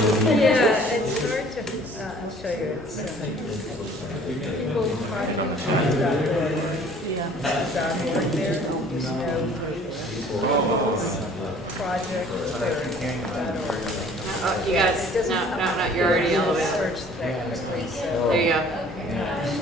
hard to, I'll show you, it's, people talking about .org there, there's no project, .org. Oh, you guys, no, you're already all the way up. Search that quickly, so. There you go.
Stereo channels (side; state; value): both; normal; correlation 0.52